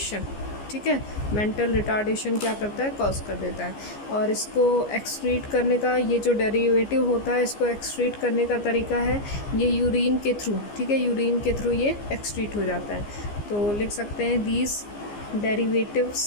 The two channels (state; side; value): late; right; 15 ms